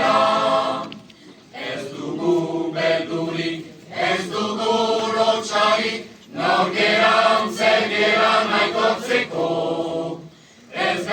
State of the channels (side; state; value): both; identical; correlation 1.00